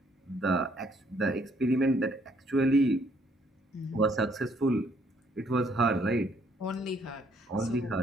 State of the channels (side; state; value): both; normal; correlation 0.67